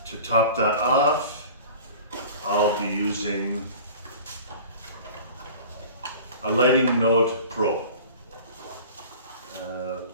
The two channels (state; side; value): inverted; both; correlation -0.41